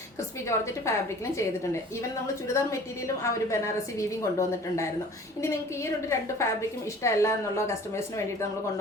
ക്രിസ്പി ജോർജറ്റ് ഫാബ്രിക്കിലും ചെയ്തിട്ടുണ്ട്. ഈവൻ നമ്മൾ ചുരിദാർ മെറ്റീരിയലും ആ ഒരു ബനാറസി വീവിങ് കൊണ്ടുവന്നിട്ടുണ്ടായിരുന്നു. ഇനി നിങ്ങൾക്ക് ഈ രണ്ട് ഫാബ്രിക്കും ഇഷ്ടമല്ല എന്നുള്ള കസ്റ്റമേഴ്സിന് വേണ്ടിയിട്ട് നമ്മൾ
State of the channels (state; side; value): normal; both; correlation 0.47